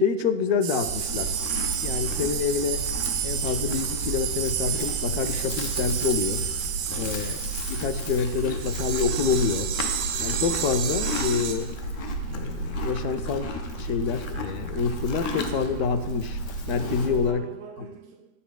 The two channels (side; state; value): left; late; 13 ms